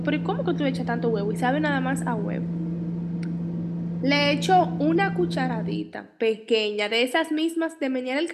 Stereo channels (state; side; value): identical; both; correlation 1.00